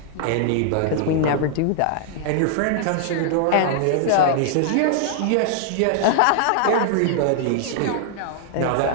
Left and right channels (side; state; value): both; different; correlation -0.01